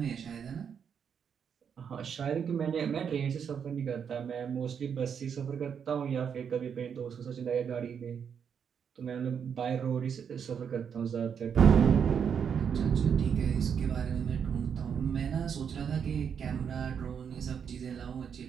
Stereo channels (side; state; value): left; quieter; 7.4 dB